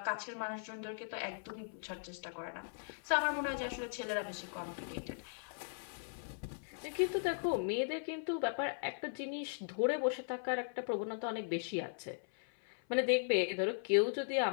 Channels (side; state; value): right; silent; 52 dB below the other